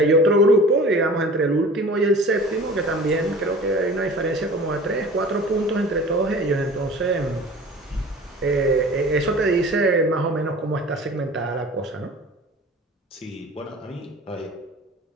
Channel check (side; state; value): both; normal; correlation 0.42